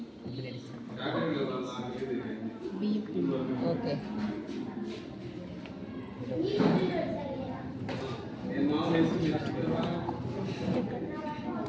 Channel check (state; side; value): identical; both; correlation 1.00